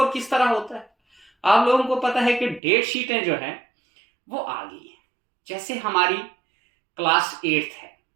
किस तरह होता है। आप लोगों को पता है कि डेट शीटें जो हैं वो आ गई है। जैसे हमारी क्लास 8 है,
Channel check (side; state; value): left; drops out; at 2.6 s